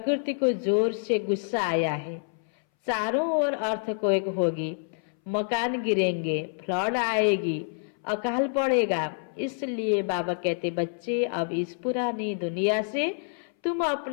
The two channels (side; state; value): right; silent; 60 dB below the other